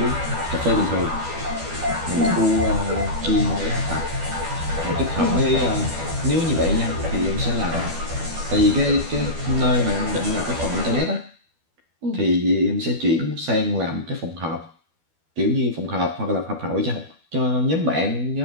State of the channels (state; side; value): late; left; 12 ms